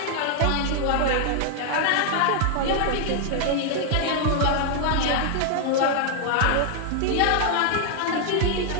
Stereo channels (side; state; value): both; different; correlation 0.00